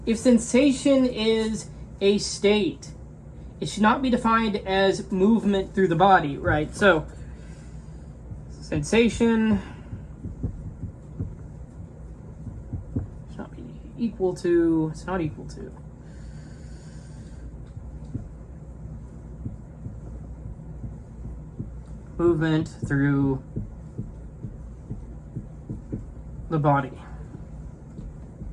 if sensation is a state, it should not be defined as movement through the body, right? So, sensation should not be equal to, it's not equal to. Movement through the body.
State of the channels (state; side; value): identical; both; correlation 1.00